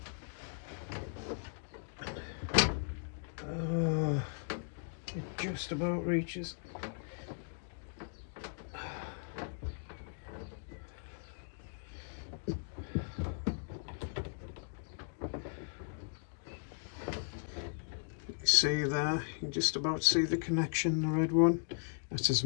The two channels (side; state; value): right; silent; digital silence